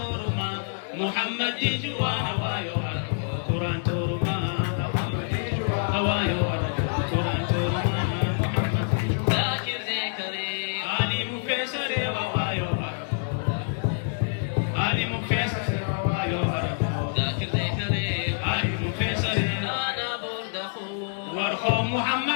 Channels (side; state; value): right; silent; digital silence